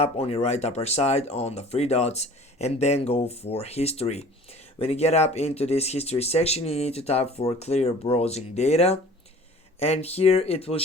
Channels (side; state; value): both; normal; correlation 0.47